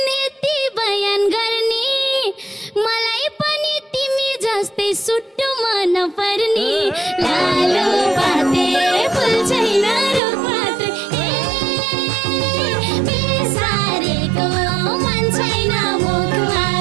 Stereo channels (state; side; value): drops out; left; at 10.2 s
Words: यति बयान गर्ने मलाई पनि तिमी जस्तै सुट्टो मन पर्ने लालो पाते फुल छैन रुख मात्रै बेसारेको मन छैन मुख